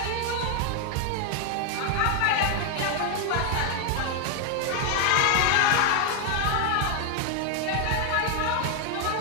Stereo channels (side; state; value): both; different; correlation 0.01